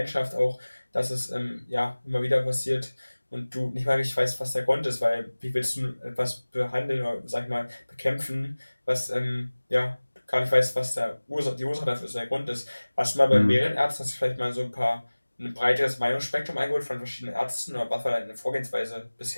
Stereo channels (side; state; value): both; inverted; correlation -1.00